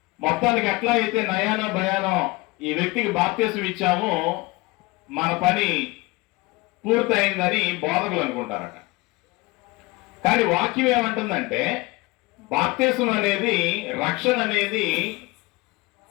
మొత్తానికి ఎట్లా అయితే నయానో భయానో ఈ వ్యక్తికి బాప్తిసం ఇచ్చాము, మన పని పూర్తయిందని బోధకులు అనుకుంటారట. కానీ వాక్యం ఏమంటుందంటే, బాప్తిసం అనేది, రక్షణ అనేది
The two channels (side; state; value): right; quieter; 23.0 dB